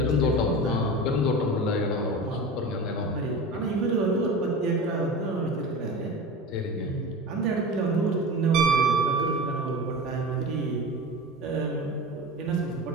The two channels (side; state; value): both; normal; correlation 0.30